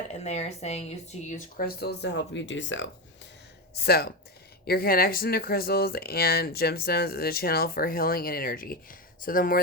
And they are saying you to use crystals to help you do so. So, your connection to crystals and gemstones is a channel for healing and energy. So the more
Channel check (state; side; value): normal; both; correlation 0.14